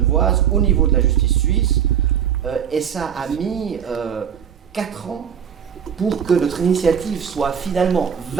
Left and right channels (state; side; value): quieter; left; 8.3 dB